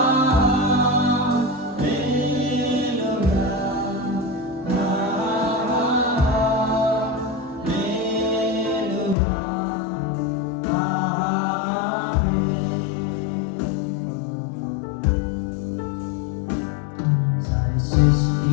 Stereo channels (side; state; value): right; drops out; at 9.2 s